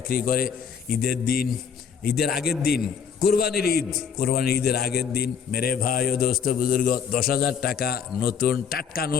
করে। ঈদের দিন, ঈদের আগের দিন, কোরবানির ঈদ, কোরবানির ঈদের আগের দিন মেরে ভাই ও দোস্ত বুজুর্গ 10,000 টাকা নতুন টাটকা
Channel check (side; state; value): right; quieter; 7.0 dB